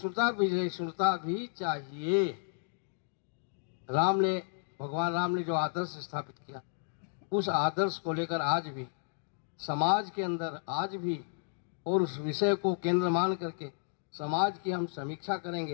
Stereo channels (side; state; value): right; silent; digital silence